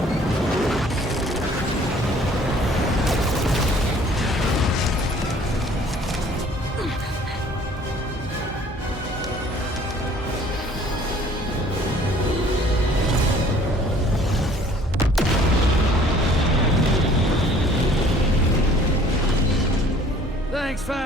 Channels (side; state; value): both; normal; correlation 0.54